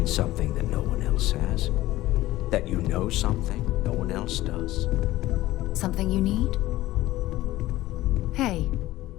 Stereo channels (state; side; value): quieter; right; 16.5 dB